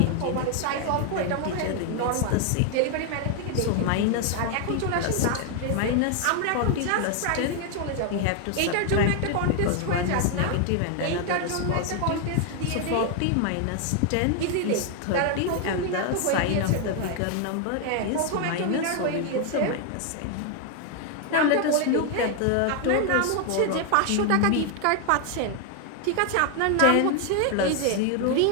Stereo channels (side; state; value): both; different; correlation 0.00